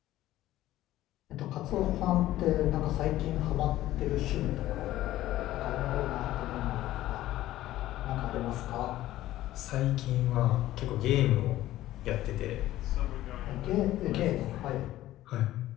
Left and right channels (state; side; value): quieter; right; 14.8 dB